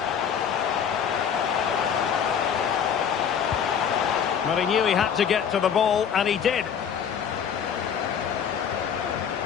Well, he knew he had to get to the ball, and he did.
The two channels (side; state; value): right; quieter; 7.8 dB